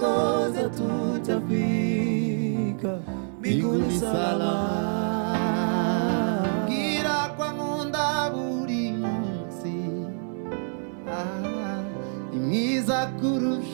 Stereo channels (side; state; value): left; silent; digital silence